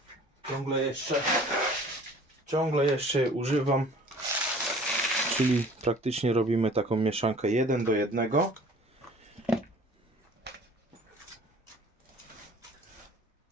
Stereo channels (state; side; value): normal; both; correlation 0.49